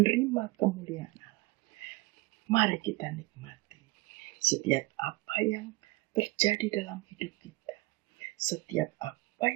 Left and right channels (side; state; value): left; quieter; 21.5 dB